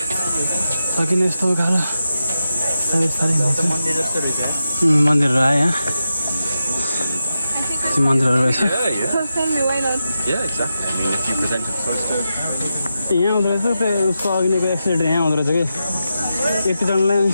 सकिने यस्तो उकालो मन्दिरहरू आयो यहाँ मन्दिरहरू रहेछ यहाँ हुँदो रहेछ त्यो उसको अघिको एक्सिडेन्ट यहाँ हुँदो रहेछ कि यतिजनालाई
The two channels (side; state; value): both; inverted; correlation -0.89